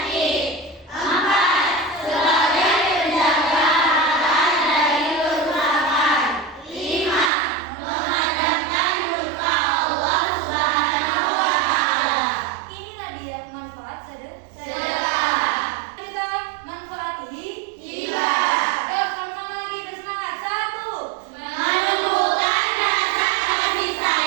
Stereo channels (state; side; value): drops out; left; at 7.3 s